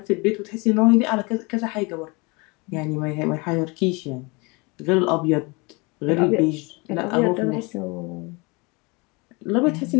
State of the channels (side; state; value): right; quieter; 27.7 dB